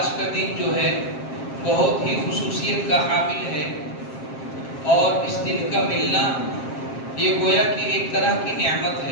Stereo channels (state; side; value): late; right; 7.5 ms